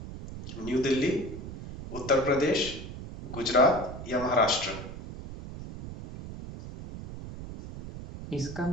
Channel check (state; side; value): noise; right; rumble, 11 dB below the sound